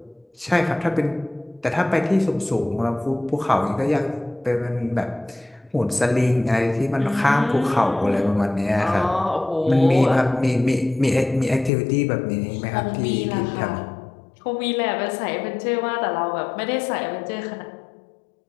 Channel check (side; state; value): right; drops out; at 11.7 s